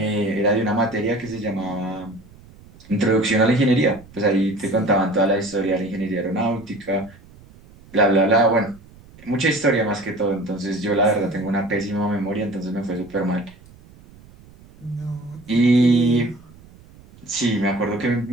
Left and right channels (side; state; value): right; noise; rumble, 24 dB below the sound